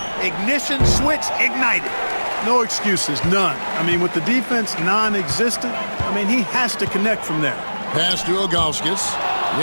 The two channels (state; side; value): inverted; both; correlation -1.00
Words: Ignition, switch, ignited. No excuses, none. I mean, with the defense non-existent, I mean, he has to connect from there. Pass to Ilgauskas.